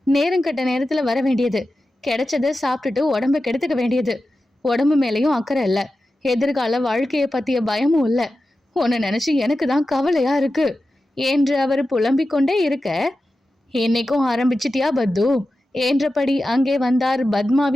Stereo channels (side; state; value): both; normal; correlation 0.92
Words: நேரம் கட்ட நேரத்துல வர வேண்டியது, கிடைச்சதை சாப்பிட்டுட்டு உடம்ப கெடுத்துக்க வேண்டியது, உடம்பு மேலேயும் அக்கறை இல்லை, எதிர்கால வாழ்க்கையை பத்திய பயமும் இல்லை, உன்னை நினைச்சு எனக்கு தான் கவலையா இருக்கு என்று அவர் புலம்பிக் கொண்டே இருக்க, என்னைக்கும் ஆரம்பிச்சிட்டியா பத்து என்றபடி அங்கே வந்தார்